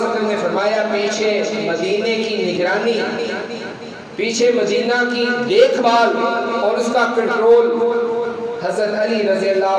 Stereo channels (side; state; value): both; identical; correlation 1.00